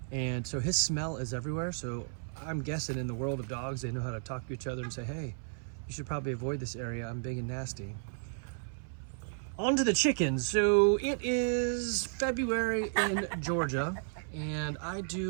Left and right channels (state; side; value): silent; left; 56 dB below the other